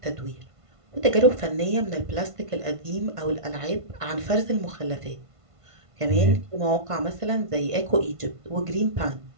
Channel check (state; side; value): late; left; 1.5 ms